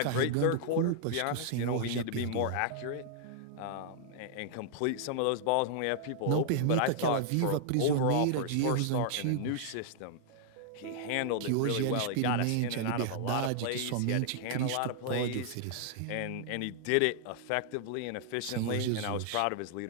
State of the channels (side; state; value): both; different; correlation -0.01